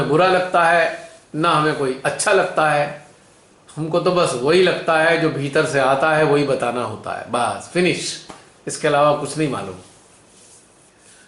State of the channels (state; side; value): identical; both; correlation 1.00